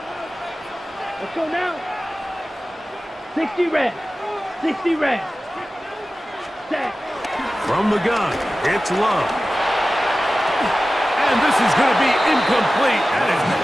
Let's go now. 60 red. 60 red. Set. From the gun, it's Love. And this is going to be incomplete. That is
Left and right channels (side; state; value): both; normal; correlation 0.95